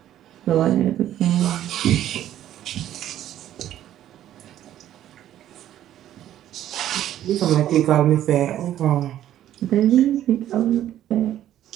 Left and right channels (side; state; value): left; quieter; 12.0 dB